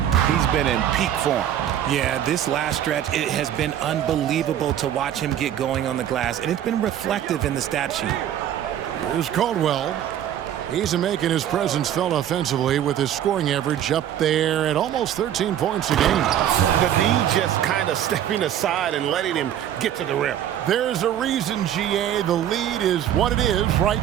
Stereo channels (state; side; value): quieter; left; 10.7 dB